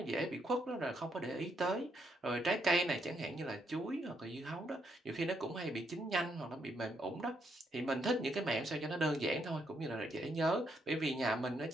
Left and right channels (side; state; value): both; normal; correlation 0.76